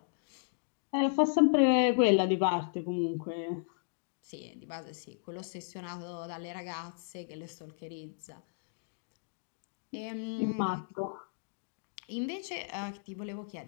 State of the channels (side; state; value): right; silent; digital silence